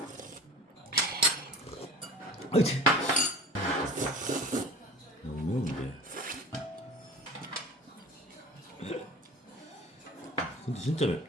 아이치. 너무 매운데. 근데 진짜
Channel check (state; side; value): normal; both; correlation 0.39